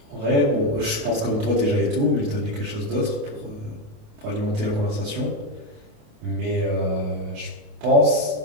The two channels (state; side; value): late; left; 28 ms